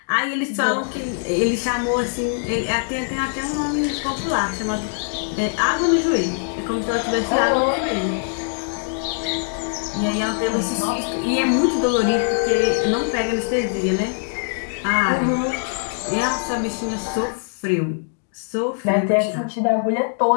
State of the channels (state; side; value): silent; right; 63 dB below the other